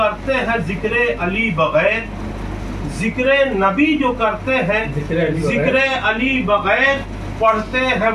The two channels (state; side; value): identical; both; correlation 1.00